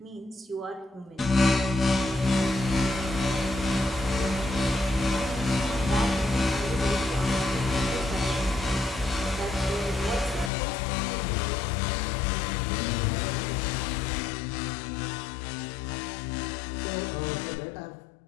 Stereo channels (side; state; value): right; drops out; at 10.5 s